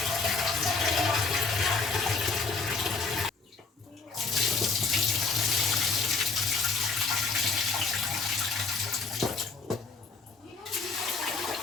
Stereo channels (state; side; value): quieter; right; 4.3 dB